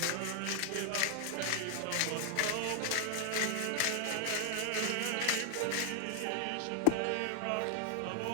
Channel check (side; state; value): both; different; correlation 0.00